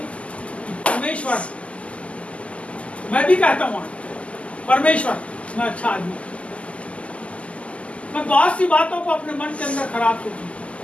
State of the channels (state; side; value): late; right; 0.061 ms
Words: कि परमेश्वर, मैं भी कहता हूँ परमेश्वर मैं अच्छा आदमी, मैं बहुत सी बातों को अपने मन के अंदर खराब सोचूं,